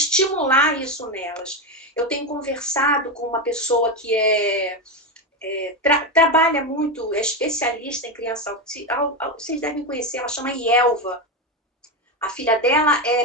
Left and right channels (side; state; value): both; normal; correlation 0.13